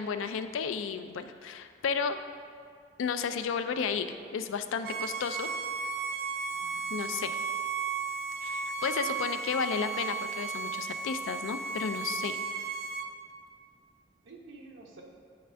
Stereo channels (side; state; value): both; normal; correlation 0.08